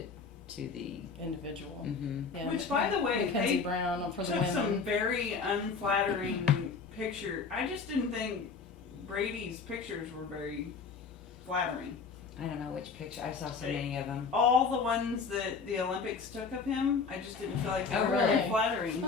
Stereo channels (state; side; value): quieter; right; 5.1 dB